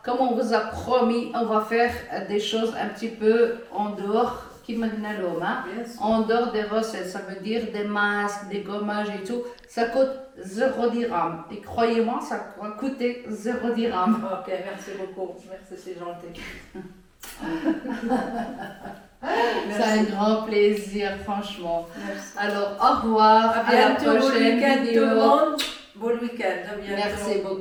Comme on vous a promis, on va faire des choses un petit peu en dehors, en dehors des recettes. Ça veut dire des masques, des gommages et tout. Ça coûte 0 dirham. Et croyez-moi, ça va coûter 0 dirham. Ok, merci beaucoup. Merci, c'est gentil. C'est un grand plaisir, franchement. Merci. Alors, au revoir. À la prochaine vidéo. Bon week-end. Merci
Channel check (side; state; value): both; identical; correlation 1.00